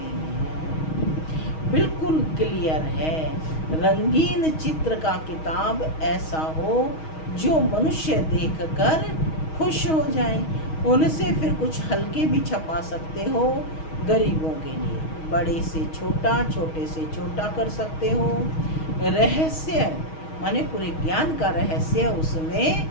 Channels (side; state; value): right; late; 6.3 ms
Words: हैं। बिल्कुल क्लियर है। रंगीन चित्र का किताब ऐसा हो जो मनुष्य देखकर खुश हो जाए। उनसे फिर कुछ हल्के भी छपा सकते हो गरीबों के लिए। बड़े से छोटा, छोटे से छोटा कर सकते हो। रहस्य माने पूरे ज्ञान का रहस्य उसमें